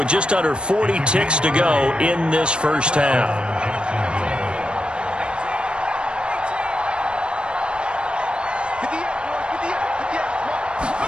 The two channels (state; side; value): late; left; 0.055 ms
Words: just under 40 ticks to go in this first half.